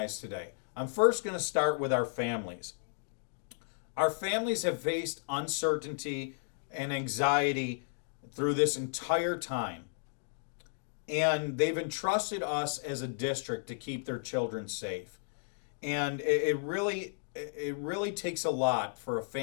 today. I'm first going to start with our families. Our families have faced uncertainty and anxiety through this entire time. And they've entrusted us as a district to keep their children safe. And it really takes a lot for a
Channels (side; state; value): right; silent; digital silence